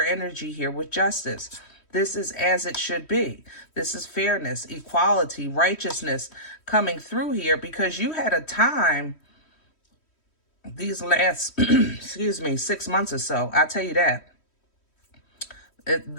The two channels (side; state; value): right; late; 3.1 ms